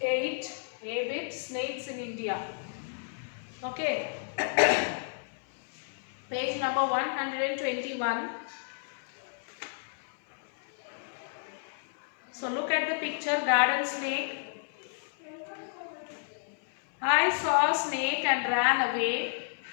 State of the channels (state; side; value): silent; right; 57 dB below the other